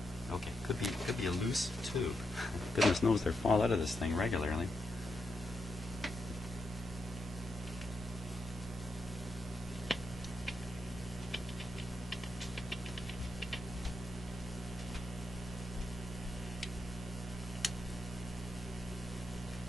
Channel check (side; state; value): both; normal; correlation 0.83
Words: Okay, could be a loose tube. Goodness knows they fall out of this thing regularly.